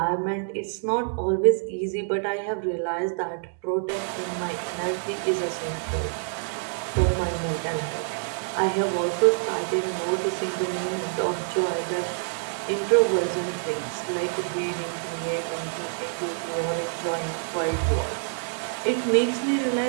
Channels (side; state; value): left; silent; digital silence